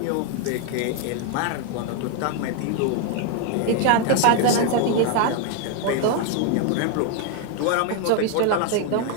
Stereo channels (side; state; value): both; different; correlation 0.01